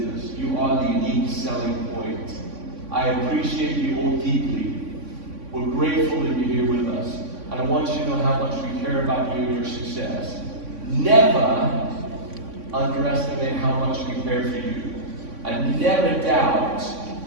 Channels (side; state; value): left; late; 3.5 ms